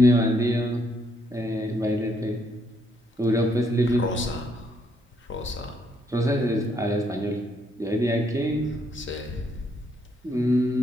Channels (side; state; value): both; normal; correlation 0.72